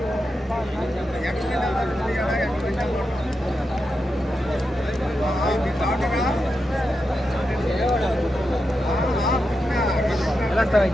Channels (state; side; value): normal; both; correlation 0.88